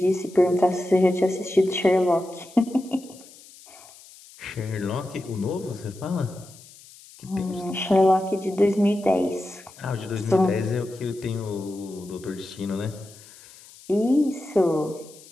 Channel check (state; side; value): noise; left; hiss, 22 dB below the sound